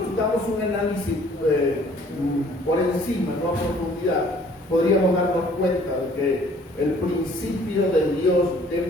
damos un análisis por encima, no a profundidad, podríamos darnos cuenta de que el principio de Dios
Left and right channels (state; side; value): normal; both; correlation 0.56